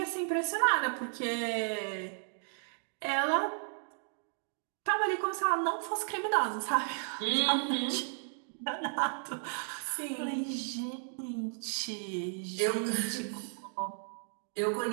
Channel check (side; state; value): left; silent; 55 dB below the other